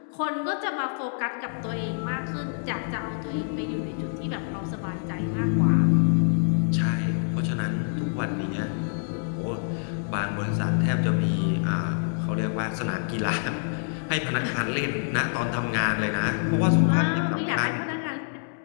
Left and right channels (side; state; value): right; silent; digital silence